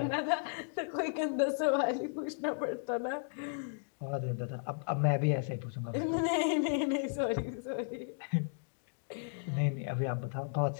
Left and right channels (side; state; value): right; silent; digital silence